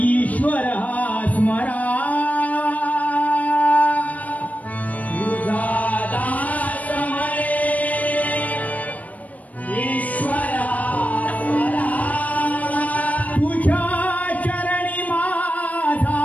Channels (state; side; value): late; right; 0.072 ms